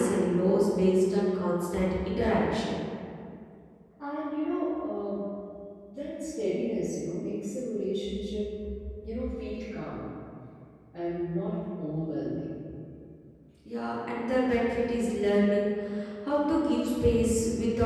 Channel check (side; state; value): both; identical; correlation 1.00